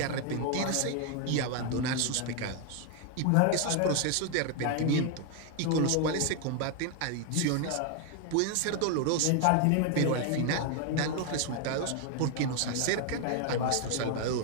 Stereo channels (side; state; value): both; different; correlation 0.00